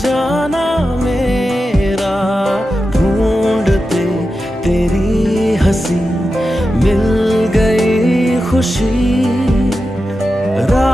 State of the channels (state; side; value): normal; both; correlation 0.91